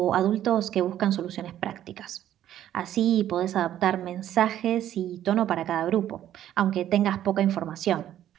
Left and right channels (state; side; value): quieter; left; 11.7 dB